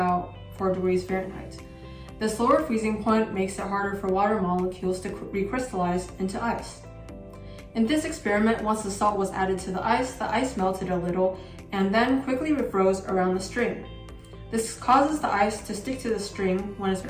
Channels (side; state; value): both; identical; correlation 1.00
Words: 4 degrees Fahrenheit. This lower freezing point makes it harder for water molecules to recrystallize into ice. In this experiment, once the salt was added to the ice melted a little and then quickly refroze around the string. This causes the ice to stick to the string when it's